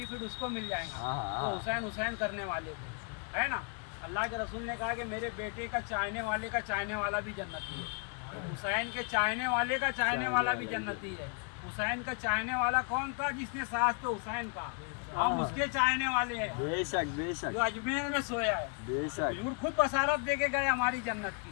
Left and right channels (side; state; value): right; quieter; 38.6 dB